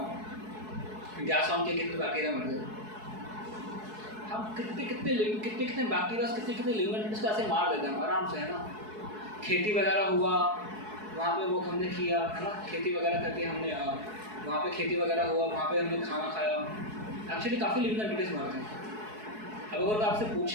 गैस ऑन के कितने बैक्टीरिया मर गए, हम कितने बैक्टीरिया कितने लिमिट इसको ऐसे मार देते हैं आराम से, है ना। खेती वगैरह हुआ वहाँ पे वो हमने किया, है ना, खेती वगैरह करके हमने वहाँ पे खेती वगैरह हुआ, वहाँ पे हमने खाना खाया, एक्चुअली काफ़ी लिविंग एंटिटीज मरते हैं। अब अगर आपसे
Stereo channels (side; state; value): left; late; 4.7 ms